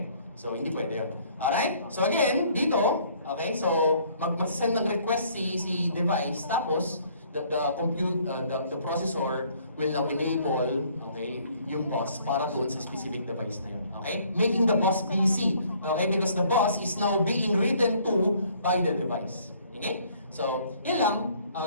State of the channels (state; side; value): inverted; both; correlation -0.60